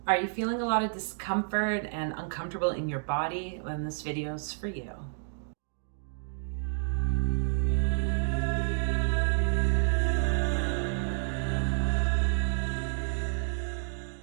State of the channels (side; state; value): left; silent; digital silence